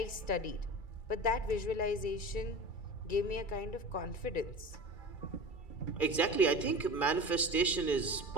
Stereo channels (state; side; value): late; right; 2.3 ms